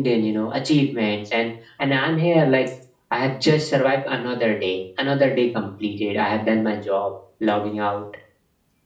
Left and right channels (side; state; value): both; identical; correlation 1.00